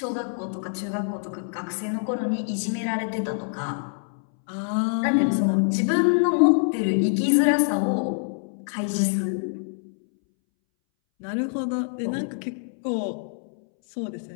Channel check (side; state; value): right; silent; 61 dB below the other